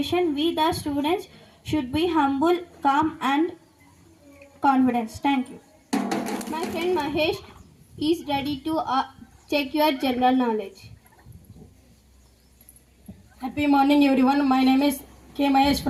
we the students should be humble, calm and confident. Thank you. My friend Mahesh is ready to check your general knowledge. Happy morning everyone. My name is K. Mahesh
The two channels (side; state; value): both; identical; correlation 1.00